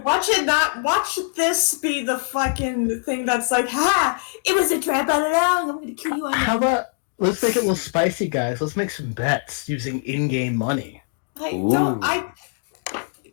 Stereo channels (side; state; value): right; silent; digital silence